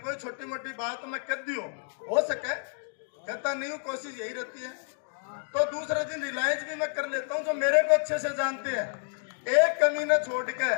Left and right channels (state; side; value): silent; right; 58 dB below the other